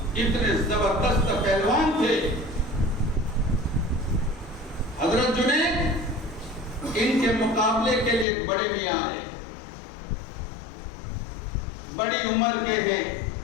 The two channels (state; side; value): drops out; right; at 8.2 s